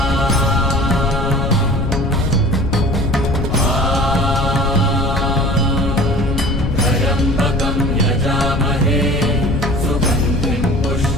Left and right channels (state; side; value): noise; left; rumble, 2 dB below the sound